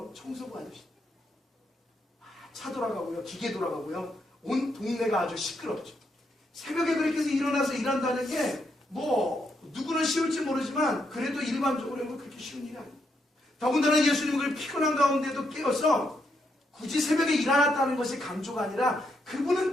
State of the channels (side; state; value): both; normal; correlation 0.79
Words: 청소부 아저씨. 차 돌아가고요, 기계 돌아가고요, 온 동네가 아주 시끄럽죠. 새벽에 그렇게 해서 일어나서 일한다는 게 뭐 누구는 쉬울지 모르지만 그래도 일반적으로는 그렇게 쉬운 일이 아니에요. 더군다나 예수님은 그 피곤한 가운데도 깨어서 굳이 새벽에 일어났다는 것이 강조가 아니라 그분은